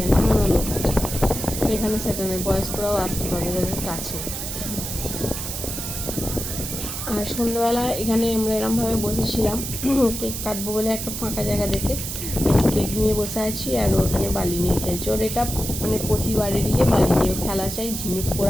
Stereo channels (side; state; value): right; noise; hiss, 6 dB below the sound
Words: না, এমন লোক আছে। এখানে সেটা নেই, বয়স্করাও আসতে পারবে যাদের কাছে। আর সন্ধ্যাবেলা এখানে আমরা এরমভাবে বসেছিলাম, কেক কাটবো বলে একটা ফাঁকা জায়গা দেখে কেক নিয়ে বসে আছি, আর ওখানে বালি নিয়ে খেলছে। ওর এটা মানে প্রতিবারেরই বালি নিয়ে খেলা চাই, ঝিনুক